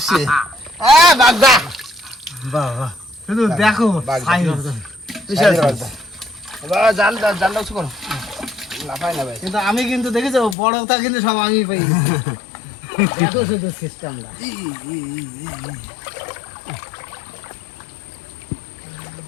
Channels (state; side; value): drops out; right; at 10.6 s